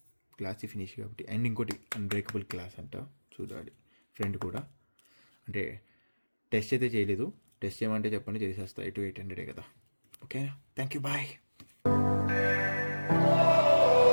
Glossy finish కాబట్టి. అండ్ ఇంకోటి అన్బ్రేకబుల్ గ్లాస్ అంట, చూడాలి. ఫ్రెండ్ కూడా అంటే టెస్ట్ అయితే చేయలేదు. టెస్ట్ చేయమంటే చెప్పండి, చేసేస్తా. 800 కదా. ఓకేనా, థ్యాంక్ యూ, బాయ్.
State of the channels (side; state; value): both; inverted; correlation -1.00